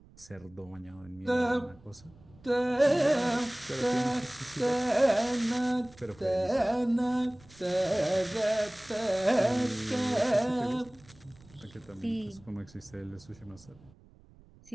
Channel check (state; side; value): noise; right; rumble, 25 dB below the sound